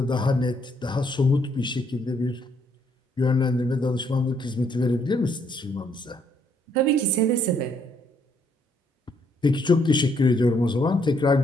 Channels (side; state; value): both; normal; correlation 0.70